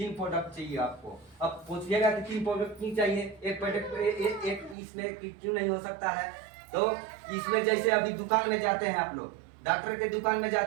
प्रोडक्ट चाहिए आपको। अब पूछिएगा कि 3 प्रोडक्ट क्यों चाहिए, एक प्रोडक्ट एक इसमें क्यों नहीं हो सकता है। तो इसमें जैसे अभी दुकान में जाते हैं आप लोग, डॉक्टर के दुकान में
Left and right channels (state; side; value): drops out; left; at 4.8 s